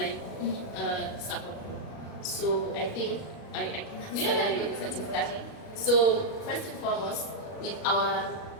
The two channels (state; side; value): late; right; 37 ms